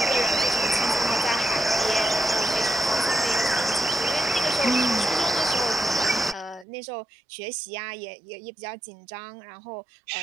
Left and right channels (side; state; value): left; drops out; at 6.7 s